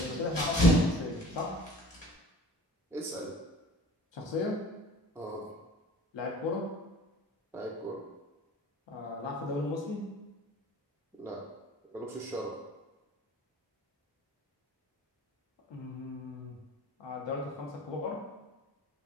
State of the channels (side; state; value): both; normal; correlation 0.45